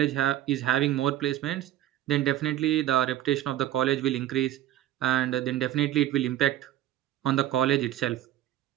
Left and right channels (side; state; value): left; quieter; 13.1 dB